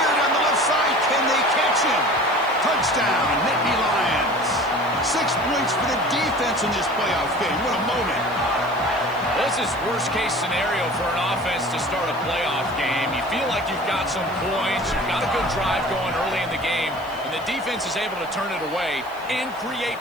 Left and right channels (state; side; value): noise; left; hiss, 25 dB below the sound